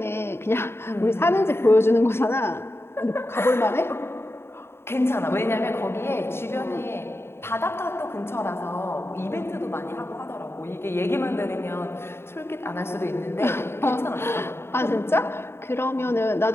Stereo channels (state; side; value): late; right; 0.12 ms